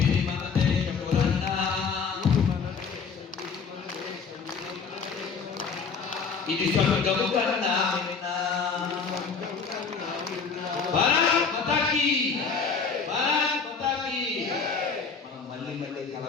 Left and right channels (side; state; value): right; quieter; 5.4 dB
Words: ఇది మన దేశం అన్నా. ఇది స్వర్గము కన్నా భారత్ మాతా కీ, భారత్ మాతా కీ. మనం మళ్ళీ మళ్ళీ